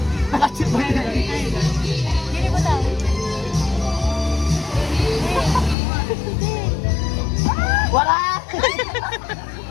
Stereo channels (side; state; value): right; drops out; at 5.8 s